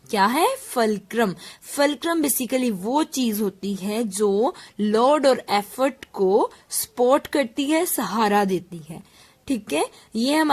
क्या है? फलक्रम. फलक्रम बेसिकली वो चीज होती है जो लोड और एफर्ट को सपोर्ट करती है, सहारा देती है. ठीक है, ये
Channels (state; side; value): identical; both; correlation 1.00